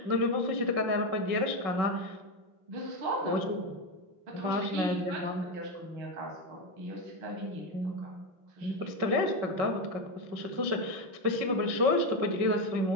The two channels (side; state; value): left; late; 5.4 ms